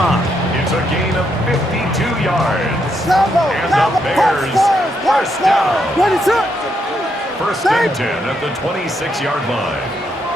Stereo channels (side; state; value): both; normal; correlation 0.78